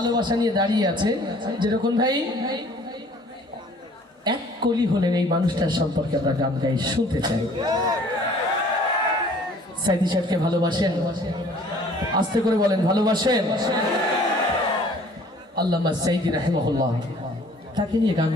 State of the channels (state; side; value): normal; both; correlation 0.54